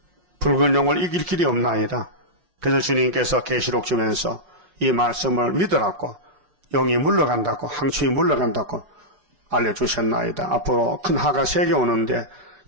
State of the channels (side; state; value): left; late; 6.1 ms